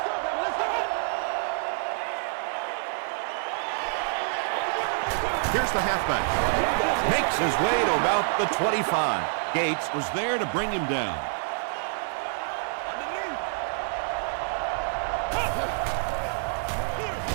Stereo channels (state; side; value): silent; left; digital silence